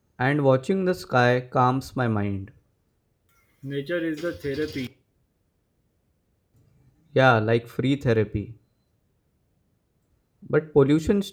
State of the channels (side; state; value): both; identical; correlation 1.00